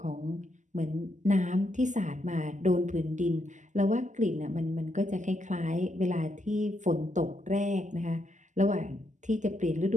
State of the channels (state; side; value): late; left; 0.35 ms